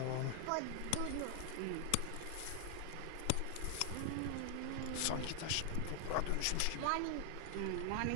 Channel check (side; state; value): both; different; correlation 0.00